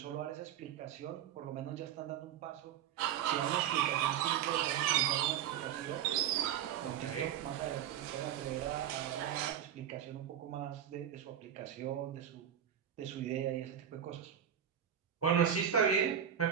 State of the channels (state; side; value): quieter; left; 9.6 dB